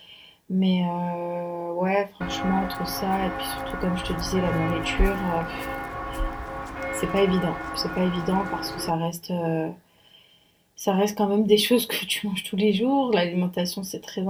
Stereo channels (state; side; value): identical; both; correlation 1.00